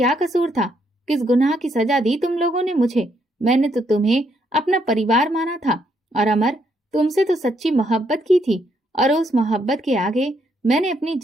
कसूर था? किस गुनाह की सजा दी तुम लोगों ने मुझे? मैंने तो तुम्हें अपना परिवार माना था। और अमर, तुमसे तो सच्ची मोहब्बत की थी, और उस मोहब्बत के आगे मैंने अपनी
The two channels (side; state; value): both; normal; correlation 0.74